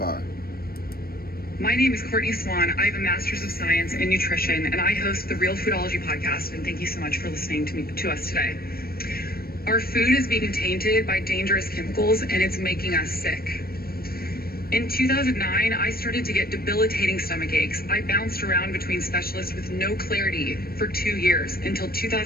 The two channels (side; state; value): right; late; 0.44 ms